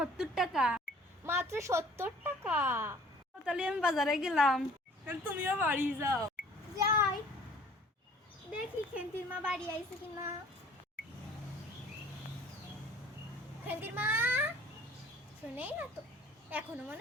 টাকা। মাত্র 70 টাকা। তাহলে আমি বাজারে গেলাম, তুমিও বাড়ি যাও। যাই দেখি খেন্তির মা বাড়ি আইছে কিনা। খেন্তির মা শুনেই না তো, এখনো মনে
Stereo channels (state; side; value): normal; both; correlation 0.52